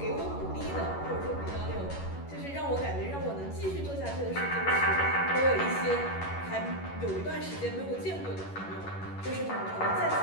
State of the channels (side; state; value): right; late; 11 ms